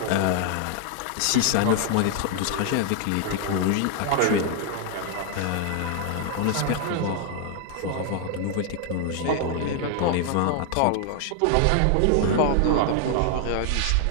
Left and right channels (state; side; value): different; both; correlation 0.00